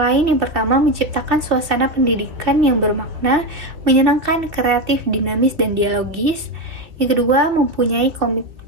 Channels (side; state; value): left; late; 2.5 ms